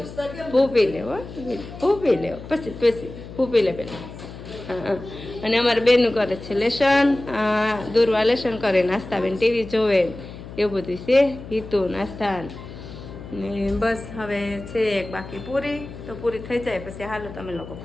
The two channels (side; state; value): left; noise; hum, 13 dB below the sound